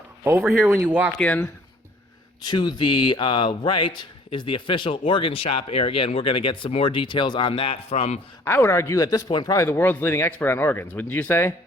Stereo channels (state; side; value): normal; both; correlation 0.55